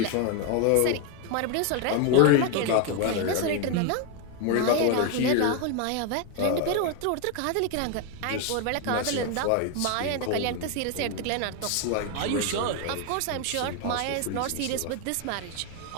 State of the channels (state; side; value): different; both; correlation 0.01